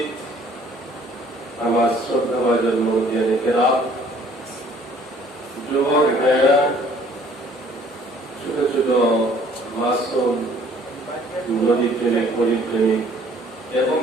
আমার শ্রদ্ধাভাজন মুরব্বিয়ানে কেরাম, যুবক ভাইয়েরা, ছোট ছোট মাসুম নদী প্রেমিক, পরিপ্রেমিক এবং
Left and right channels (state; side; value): normal; both; correlation 0.57